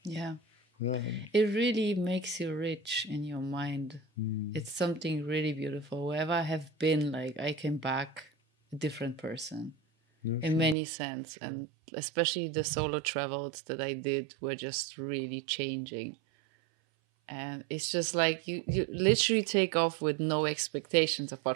Yeah. It really makes you rich in your mind. It's something really beautiful. Wherever I have been, like, I came back a different person in many sense. And especially the solo travels that I did were just really changing. And it's just like you literally take off with no expectations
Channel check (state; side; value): drops out; left; at 10.8 s